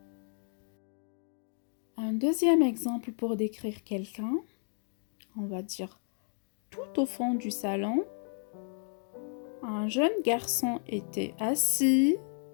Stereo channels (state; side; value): silent; right; 56 dB below the other